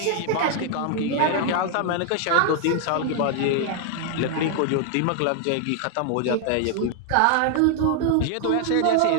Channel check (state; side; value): different; both; correlation 0.00